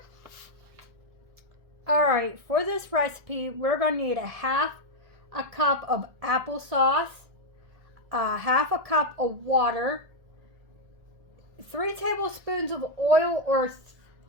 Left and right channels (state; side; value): late; left; 1.7 ms